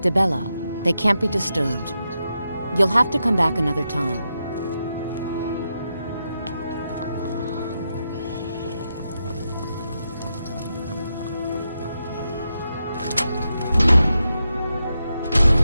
Dibella. They can't be disturbed. You'll have to come back another time.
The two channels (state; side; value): inverted; both; correlation -0.86